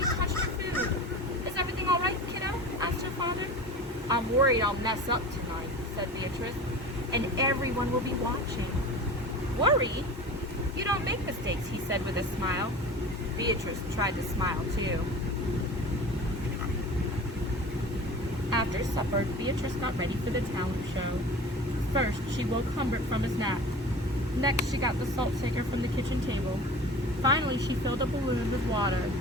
touched her food. "Is everything all right, kiddo?" asked her father. "I'm worried I'll mess up tonight," said Beatrice, "and everyone will be watching." "Worried? You don't make mistakes," he said with a smile. Beatrice tried to smile too. After supper, Beatrice got ready for the talent show. First, she woke Humbert from his nap. Next, she got the salt shaker from the kitchen table. Finally, she filled a balloon with water.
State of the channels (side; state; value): both; normal; correlation 0.36